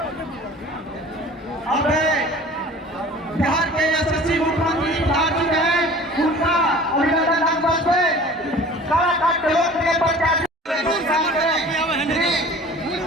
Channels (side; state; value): both; normal; correlation 0.44